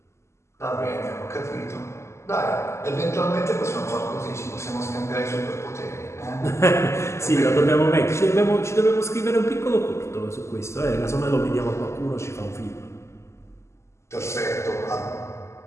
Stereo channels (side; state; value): right; late; 0.13 ms